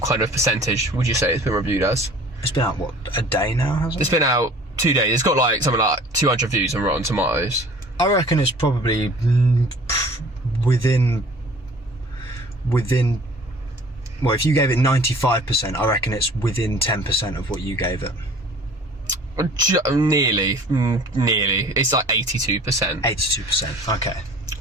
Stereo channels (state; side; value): normal; both; correlation 0.49